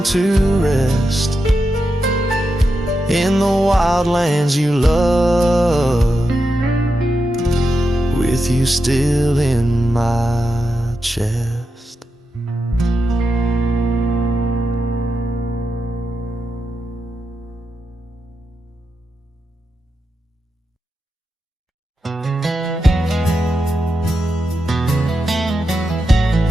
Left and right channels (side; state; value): both; normal; correlation 0.87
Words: to rest in the wild lands you love, with you still in my chest.